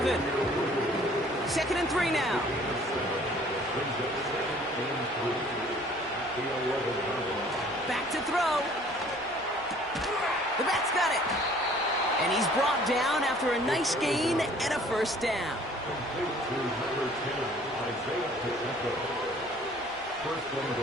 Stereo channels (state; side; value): normal; both; correlation 0.54